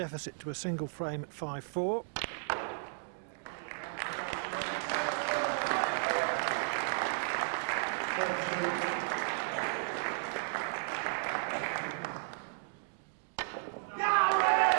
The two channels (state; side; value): silent; left; digital silence